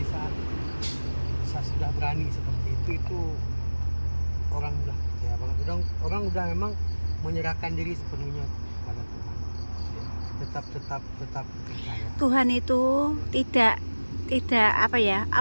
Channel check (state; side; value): inverted; both; correlation -1.00